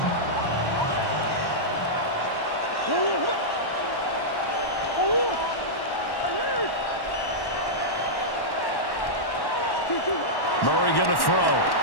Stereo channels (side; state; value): right; late; 1.1 ms